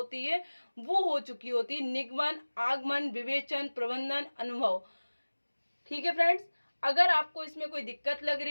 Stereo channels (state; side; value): inverted; both; correlation -1.00